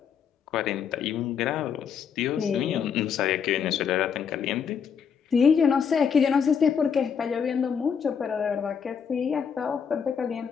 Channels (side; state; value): right; quieter; 7.0 dB